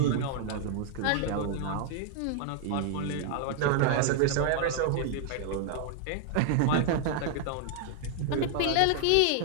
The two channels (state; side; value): different; both; correlation 0.00